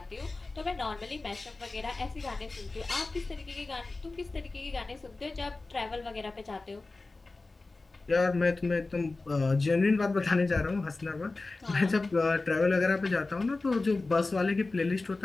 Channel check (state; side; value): quieter; right; 3.4 dB